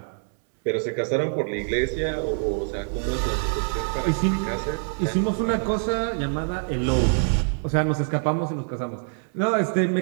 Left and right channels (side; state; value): left; silent; 62 dB below the other